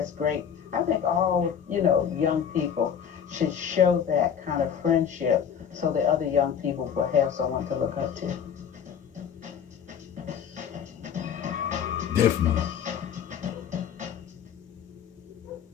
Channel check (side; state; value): right; quieter; 7.9 dB